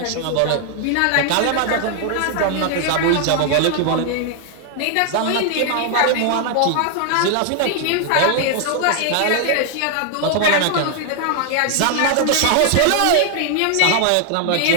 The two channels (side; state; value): both; different; correlation 0.00